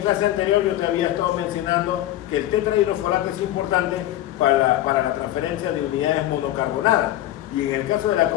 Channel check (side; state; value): right; quieter; 13.9 dB